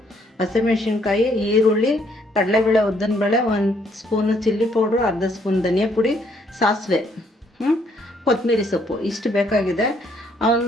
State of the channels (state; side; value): normal; both; correlation 0.68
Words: ಹಸಿಮೆಣ್ಸಿನ್ಕಾಯಿ, ಈರುಳ್ಳಿ, ಕಡಲೆಬೇಳೆ, ಉದ್ದಿನಬೇಳೆ, 1 ಸ್ಪೂನು ಚಿಲ್ಲಿ ಪೌಡ್ರು, ಅರ್ಧ ಸ್ಪೂನ್ ಧನಿಯಾ ಪುಡಿ, ಸಾಸಿವೆ, ಕೊತ್ತಂಬರಿ ಸೊಪ್ಪು ಇಷ್ಟು ಬೇಕಾಗಿದೆ.